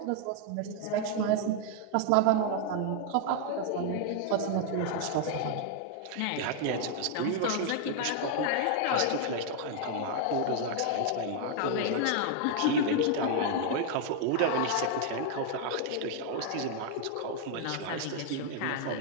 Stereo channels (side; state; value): both; different; correlation 0.00